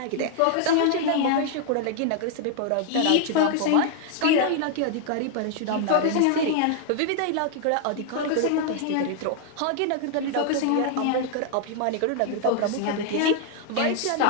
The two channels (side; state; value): both; different; correlation 0.00